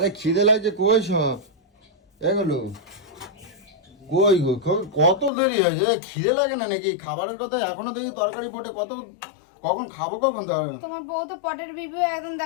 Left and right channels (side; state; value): right; drops out; at 5.3 s